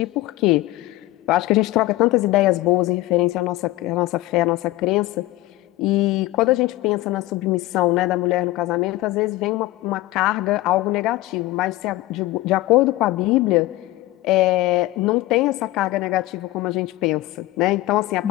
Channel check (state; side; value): quieter; right; 17.5 dB